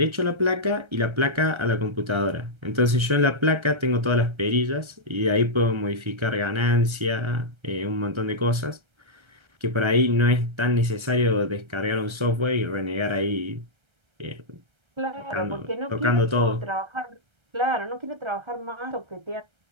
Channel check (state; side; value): late; left; 1.3 ms